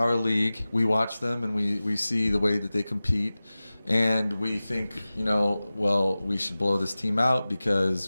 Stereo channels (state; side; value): inverted; both; correlation -0.97